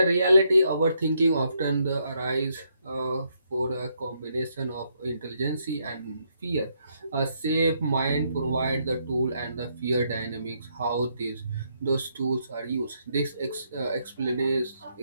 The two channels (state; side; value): inverted; both; correlation -0.75